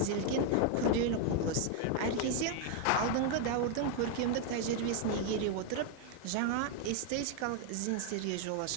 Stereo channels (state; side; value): different; both; correlation 0.00